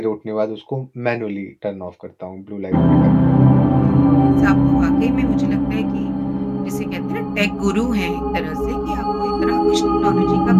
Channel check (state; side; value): identical; both; correlation 1.00